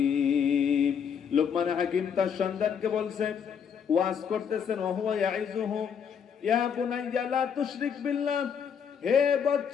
লোকমান হাকিম তার সন্তানকে বলছে, ওয়াজ করতেছেন, وَهُوَ يَعِظُهُ يَا بُنَيَّ لَا تُشْرِكْ بِاللَّهِ, হে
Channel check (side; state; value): right; quieter; 7.4 dB